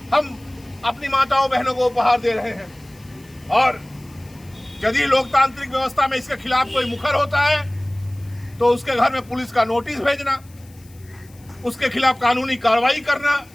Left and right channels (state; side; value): noise; left; hiss, 27 dB below the sound